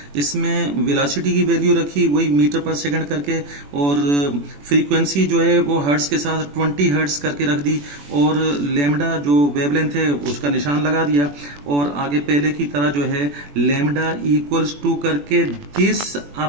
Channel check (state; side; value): late; left; 21 ms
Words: इसमें वेलोसिटी की वैल्यू रखी वही मीटर पर सेकंड करके, और फ्रीक्वेंसी जो है वो हर्ट्ज के साथ 20 हर्ट्ज करके रख दी, और लैम्डा जो वेवलेंथ है उसका निशान लगा दिया। और आगे पहले की तरह जो है लैम्डा इक्वल्स टू करके दिस